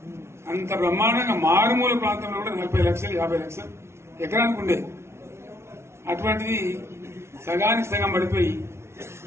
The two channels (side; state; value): left; late; 0.13 ms